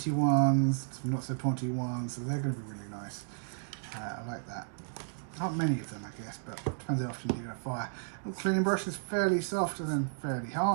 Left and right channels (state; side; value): silent; left; 56 dB below the other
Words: ones, some not so pointy ones, so they're going to be really nice. I like that. Not many of them, I guess, but it depends how often you do a fire. The cleaning brush is fairly soft and then fairly